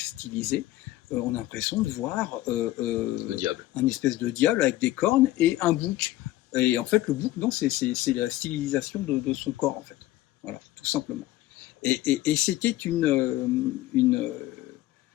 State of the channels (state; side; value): quieter; right; 15.9 dB